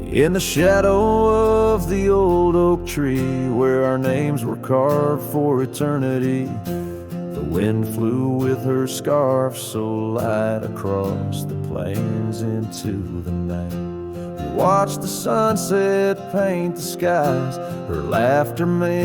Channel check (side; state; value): both; identical; correlation 1.00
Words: In the shadow of the old oak tree, where our names were carved for eternity, the wind flew with her scarf so light across the plains into the night. We watched the sunset paint the skies, her laughter